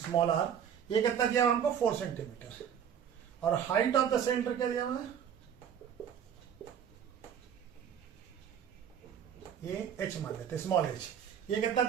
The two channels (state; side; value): quieter; left; 8.6 dB